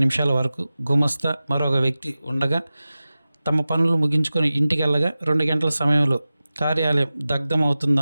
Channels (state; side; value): inverted; both; correlation -0.96